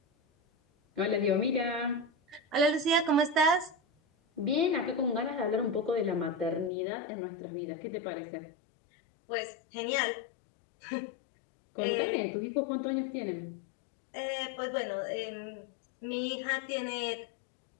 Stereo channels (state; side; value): drops out; right; at 6.7 s